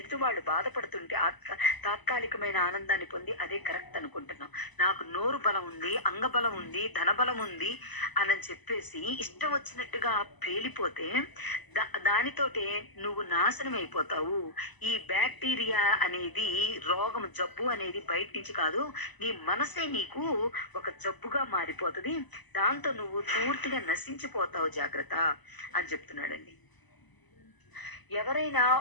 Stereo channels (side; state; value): right; late; 1.0 ms